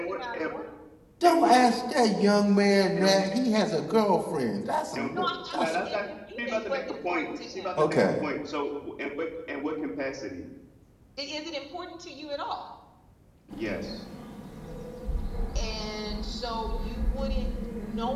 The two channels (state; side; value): identical; both; correlation 1.00